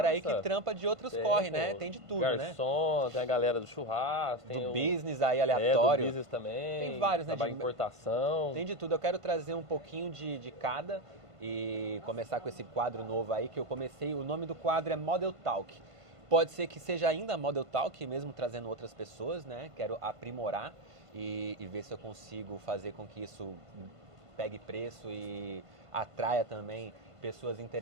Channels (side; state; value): left; late; 1.5 ms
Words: aí que trampa de outros corre, né? Tem de tudo, garçom, né? Tem a galera do churrasco, tem do business aí aleatório. Do business também. Tem vários, né? De importação. Tem de tudo. Eu quero trazer um pouquinho de cada e começar com esse quadro novo aí que eu comecei. O nome do quadro é Model Talk. Pode ser que seja ainda Model Talk, mesmo trazendo outras pessoas, né? Quero aprimorar e ver se eu consigo fazer com que isso pegue preço e atraia também pessoas